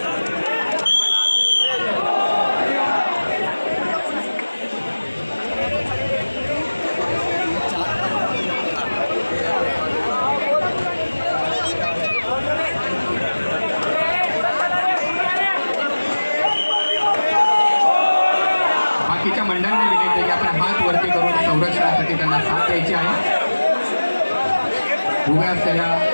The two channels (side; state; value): both; inverted; correlation -1.00